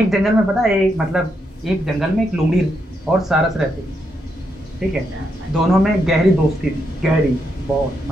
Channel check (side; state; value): both; normal; correlation 0.80